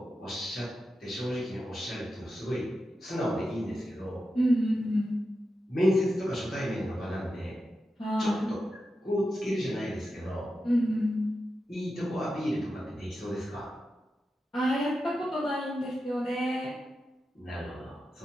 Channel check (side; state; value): both; normal; correlation 0.90